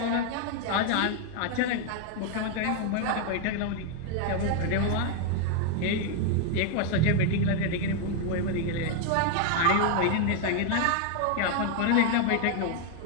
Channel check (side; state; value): both; different; correlation 0.00